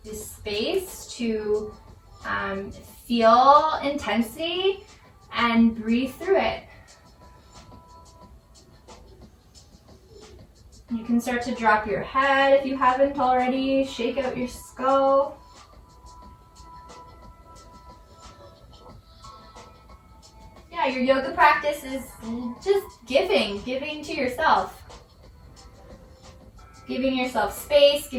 the space to feel intensity and breathe through it. You can start to drop your head if you haven't already. Shake out your skull. Yeah, your yoga practice is just giving to yourself. Giving yourself space,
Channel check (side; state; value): both; identical; correlation 1.00